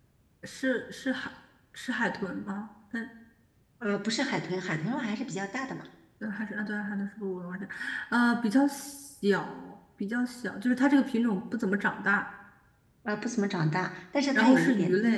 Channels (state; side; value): identical; both; correlation 1.00